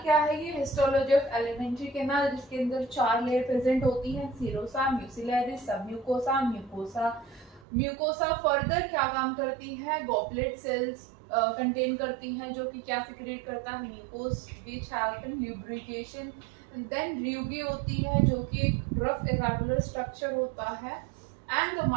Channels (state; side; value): drops out; left; at 7.7 s